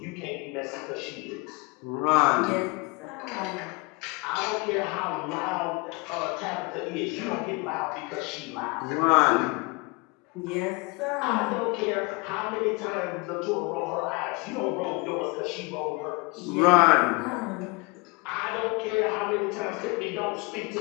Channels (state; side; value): quieter; right; 27.3 dB